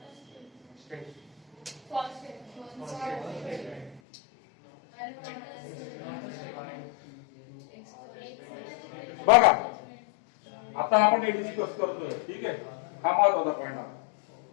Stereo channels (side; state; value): right; drops out; at 4.0 s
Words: बघा आता आपण हे डिस्कस करतोय. ठीक आहे. हा महत्वाचा पॉइंट